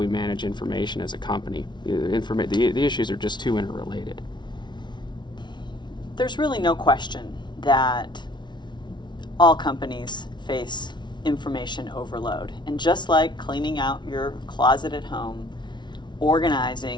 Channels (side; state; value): right; late; 0.22 ms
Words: manage information as a company? The issues are just too interrelated. There's really no question that all companies face information overload. And just like cleaning out your closet at home,